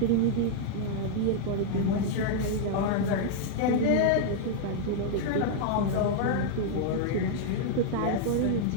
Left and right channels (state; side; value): different; both; correlation -0.01